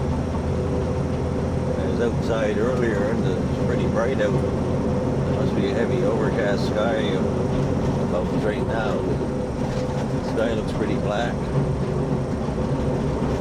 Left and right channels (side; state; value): both; identical; correlation 1.00